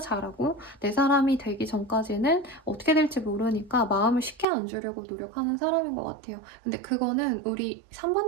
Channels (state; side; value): drops out; left; at 4.5 s